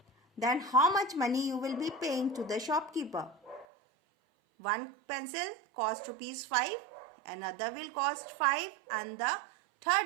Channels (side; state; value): left; drops out; at 3.7 s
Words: Then how much money you will be paying to the shopkeeper? One pencil cost rupees 5, another will cost 5 and the